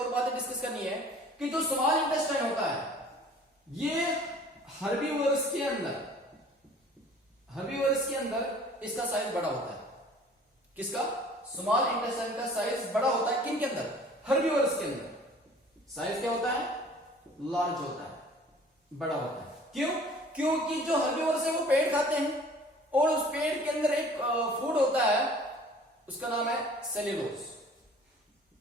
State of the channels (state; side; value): normal; both; correlation 0.50